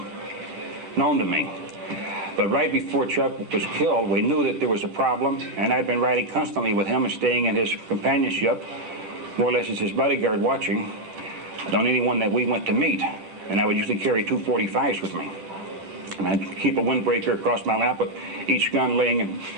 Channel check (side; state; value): left; late; 10 ms